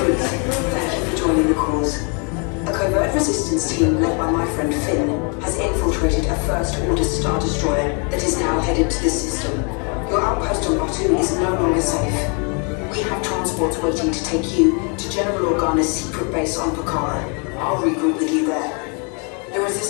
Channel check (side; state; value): right; quieter; 36.3 dB